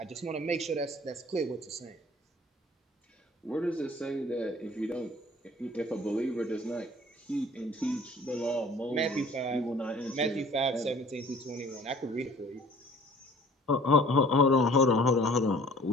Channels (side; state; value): both; normal; correlation 0.52